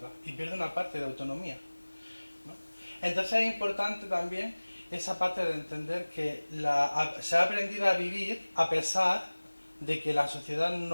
y pierdo una parte de autonomía, ¿no? Entonces es importante también esa parte de entender que se ha aprendido a vivir a pesar de que la sociedad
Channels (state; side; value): inverted; both; correlation -1.00